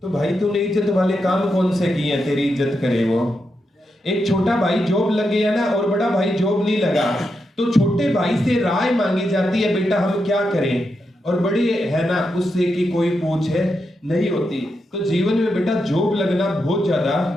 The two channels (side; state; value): both; normal; correlation 0.85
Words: तो भाई तूने इज्जत वाले काम कौन से किए हैं तेरी इज्जत करे वो। एक छोटा भाई जॉब लग गया ना और बड़ा भाई जॉब नहीं लगा, तो छोटे भाई से राय मांगी जाती है, बेटा हम क्या करें, और बड़ी है ना उससे कि कोई पूछ है नहीं होती। तो जीवन में बेटा जॉब लगना बहुत ज्यादा